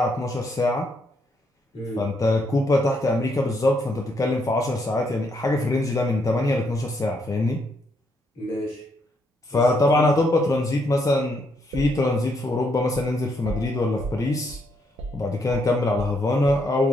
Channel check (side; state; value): both; normal; correlation 0.75